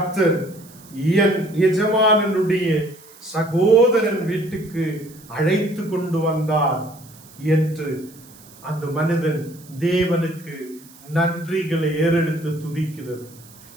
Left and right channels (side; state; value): right; noise; hiss, 23 dB below the sound